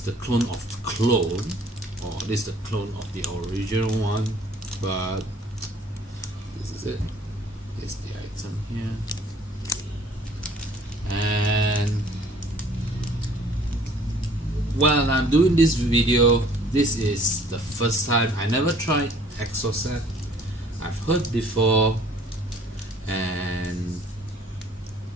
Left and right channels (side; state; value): both; normal; correlation 0.56